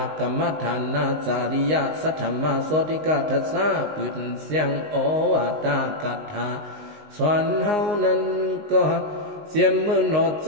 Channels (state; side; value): late; left; 19 ms